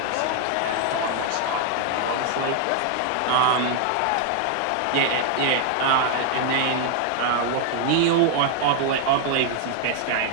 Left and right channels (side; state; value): both; different; correlation 0.00